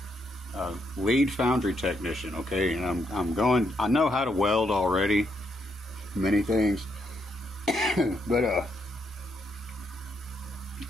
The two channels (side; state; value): both; normal; correlation 0.77